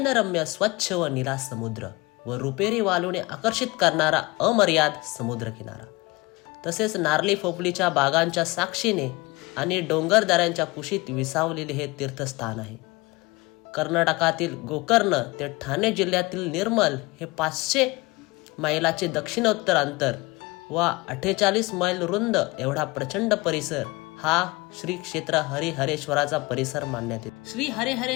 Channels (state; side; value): quieter; right; 23.6 dB